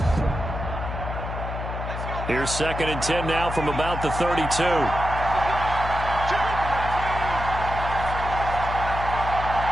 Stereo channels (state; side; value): noise; left; hum, 6 dB below the sound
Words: Here's 2nd and 10 now from about the 32.